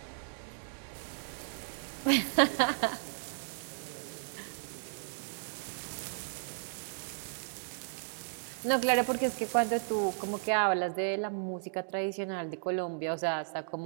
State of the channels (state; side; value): silent; left; digital silence